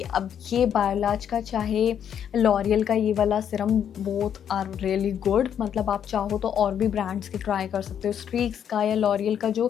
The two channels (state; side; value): quieter; right; 8.9 dB